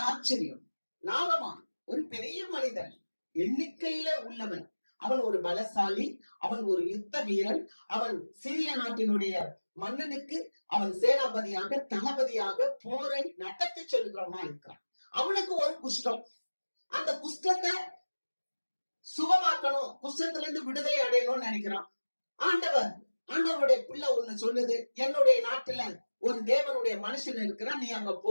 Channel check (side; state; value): both; inverted; correlation -1.00